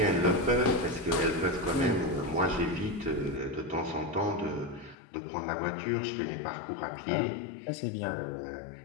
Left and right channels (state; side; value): drops out; right; at 5.0 s